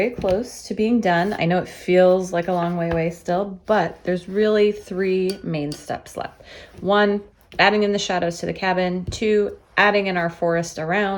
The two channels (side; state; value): both; identical; correlation 1.00